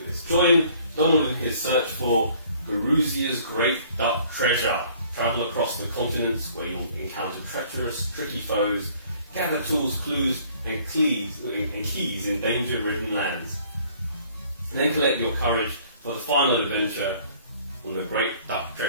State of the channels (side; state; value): both; inverted; correlation -0.56